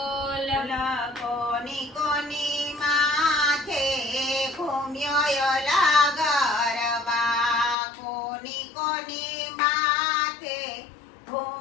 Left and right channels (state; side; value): drops out; right; at 7.8 s